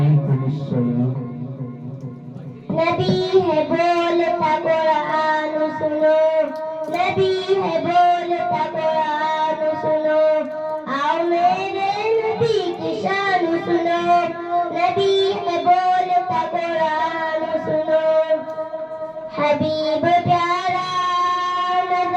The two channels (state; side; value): identical; both; correlation 1.00